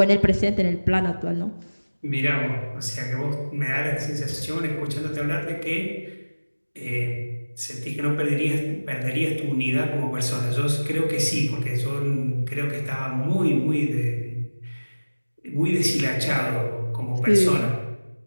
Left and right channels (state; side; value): inverted; both; correlation -1.00